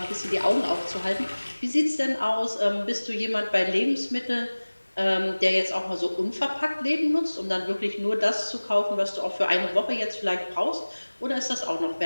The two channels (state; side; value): inverted; both; correlation -1.00